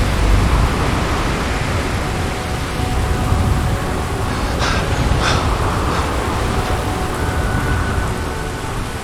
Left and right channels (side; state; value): both; identical; correlation 1.00